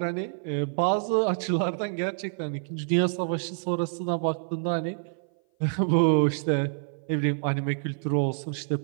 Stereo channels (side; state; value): left; silent; 57 dB below the other